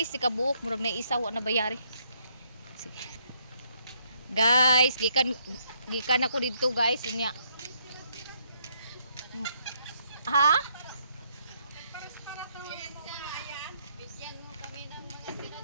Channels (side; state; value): both; inverted; correlation -0.71